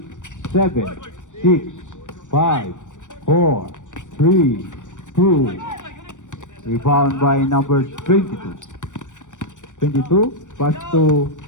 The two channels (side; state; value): right; late; 0.86 ms